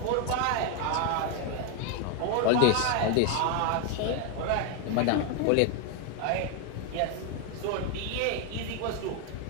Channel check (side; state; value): both; different; correlation 0.01